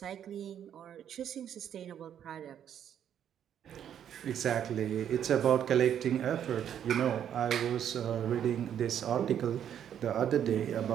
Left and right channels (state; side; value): quieter; left; 9.5 dB